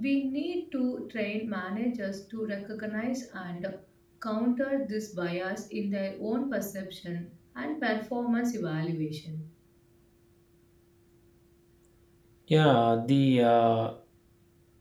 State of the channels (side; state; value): both; identical; correlation 1.00